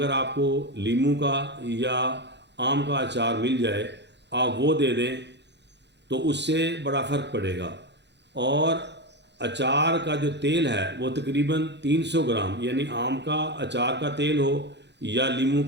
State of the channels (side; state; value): left; late; 0.51 ms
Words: आपको लीमू का या आम का अचार मिल जाए आप वो दे दें तो उससे बड़ा फ़र्क पड़ेगा। और अचार का जो तेल है वो तकरीबन 300 ग्राम, यानी आम का अचार का तेल हो या लीमू